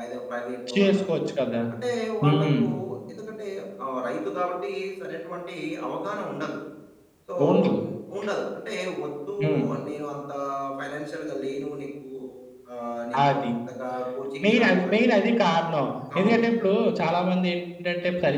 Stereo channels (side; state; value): both; identical; correlation 1.00